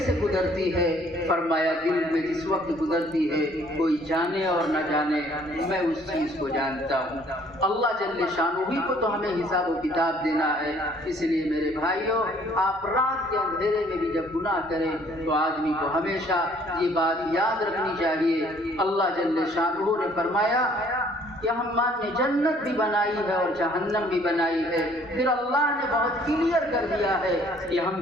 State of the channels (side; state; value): right; noise; rumble, 27 dB below the sound